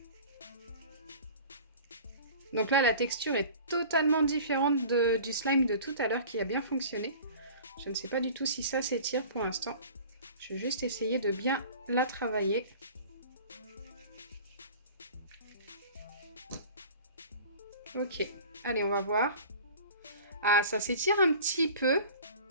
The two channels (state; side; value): inverted; both; correlation -0.42